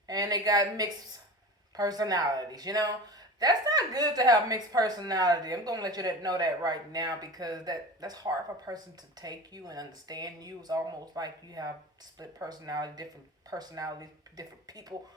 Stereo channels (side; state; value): both; normal; correlation 0.34